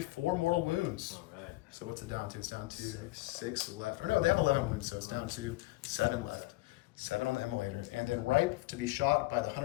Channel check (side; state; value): right; quieter; 20.3 dB